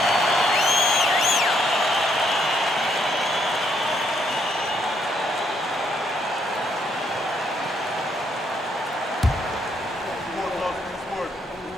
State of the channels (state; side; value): normal; both; correlation 0.73